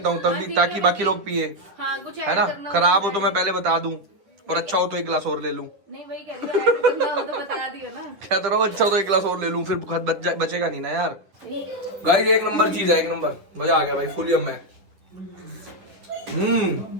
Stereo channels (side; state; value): left; late; 10 ms